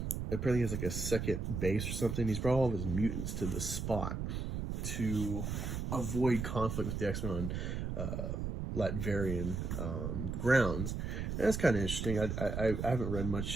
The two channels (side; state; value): right; noise; rumble, 3 dB below the sound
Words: Apparently he has like a second base or something. He's brought all of his mutants to this spot to avoid conflict with the X-Men on Latverian grounds. And that's kind of interesting. I haven't read